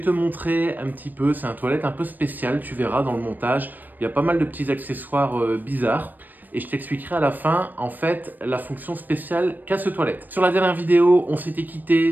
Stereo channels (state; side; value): late; left; 0.088 ms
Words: montrer un petit peu, c'est un toilette un peu spécial, tu verras dans le montage, il y a pas mal de petits accessoires bizarres. Et je t'expliquerai à la fin, en fait, la fonction spéciale qu'a ce toilette. Sur la dernière vidéo, on s'était